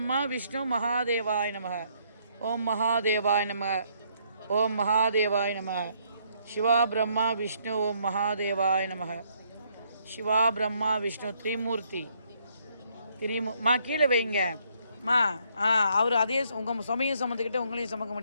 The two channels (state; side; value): inverted; both; correlation -0.70